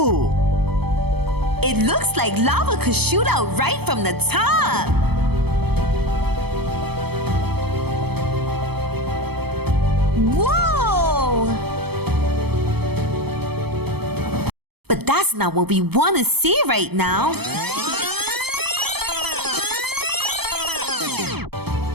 It looks like lava could shoot out right from the top. Whoa! But that's not what we want to see right now.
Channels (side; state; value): left; late; 0.97 ms